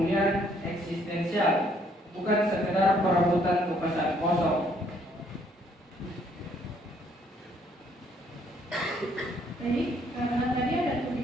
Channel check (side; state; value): both; normal; correlation 0.66